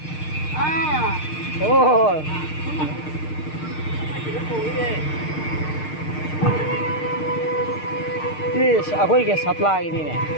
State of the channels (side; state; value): right; late; 6.6 ms